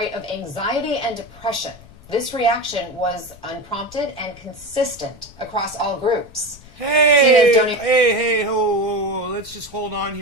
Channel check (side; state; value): left; noise; rumble, 22 dB below the sound